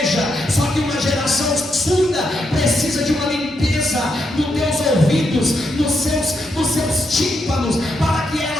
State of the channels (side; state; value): both; normal; correlation 0.81